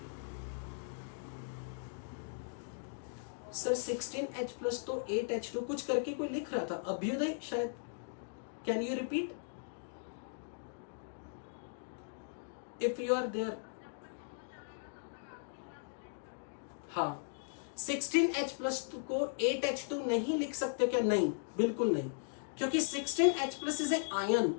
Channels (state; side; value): silent; right; digital silence